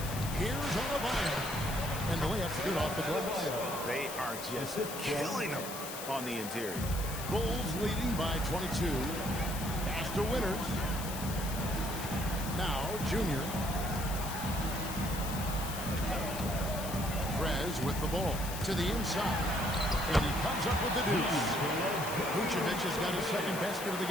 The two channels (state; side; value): noise; left; hiss, 8 dB below the sound